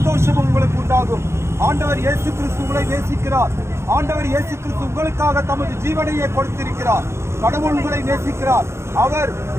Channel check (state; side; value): late; left; 0.13 ms